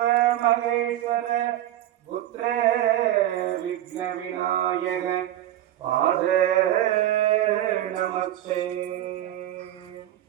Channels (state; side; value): quieter; left; 13.0 dB